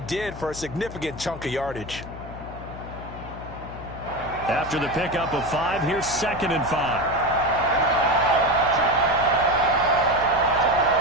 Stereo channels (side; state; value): left; noise; hum, 12 dB below the sound